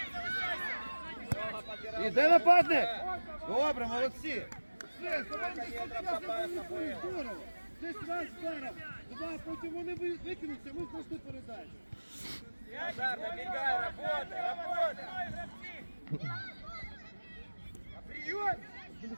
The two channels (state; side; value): inverted; both; correlation -1.00